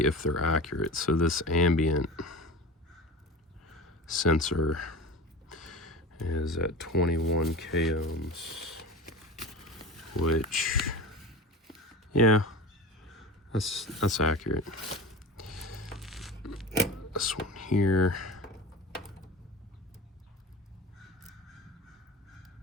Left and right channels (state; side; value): normal; both; correlation 0.33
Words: they're accurate. So this ambient sensor is at 21 k ohms, which, yeah, that's accurate. this one here.